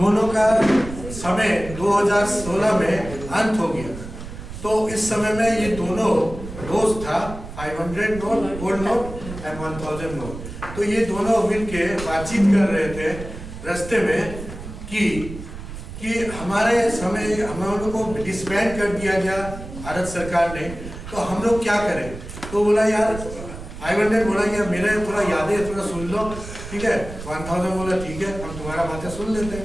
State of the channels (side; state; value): right; noise; rumble, 11 dB below the sound